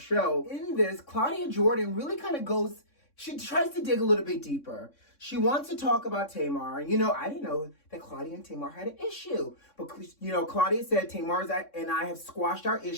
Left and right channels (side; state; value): right; late; 3.6 ms